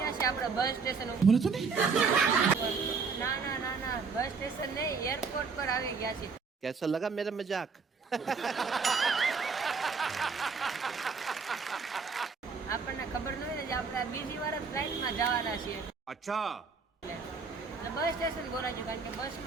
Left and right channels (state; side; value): quieter; left; 5.1 dB